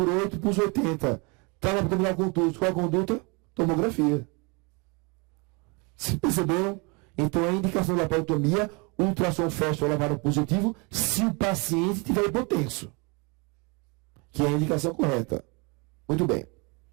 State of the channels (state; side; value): quieter; left; 30.3 dB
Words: pulso 80, trauma abdominal contuso, qual a conduta? Tomografia. Se perceberam? Então a indicação da laparotomia, ultrassom feste ou lavado positivo, se o paciente tiver hipotenso. Que é a indicação correta. Muito bem.